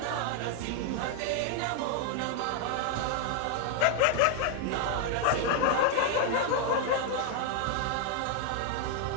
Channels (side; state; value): both; different; correlation 0.00